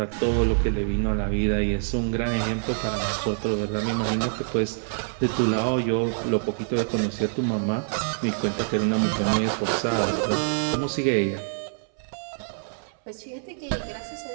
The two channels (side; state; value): left; silent; 61 dB below the other